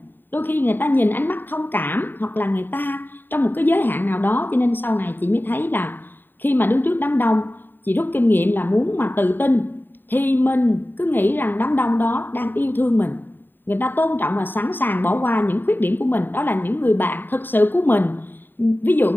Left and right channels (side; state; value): right; late; 0.093 ms